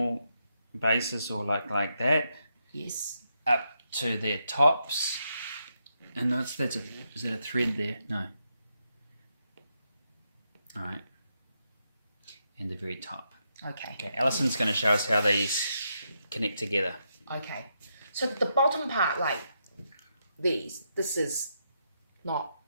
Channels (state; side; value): inverted; both; correlation -0.81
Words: bases or like that. Yes. Up to their tops. And is that a thread there? No. Alright. And the very top. Okay. Okay, Alison's going to show us how these connect together. Okay. So the bottom part, like this is not,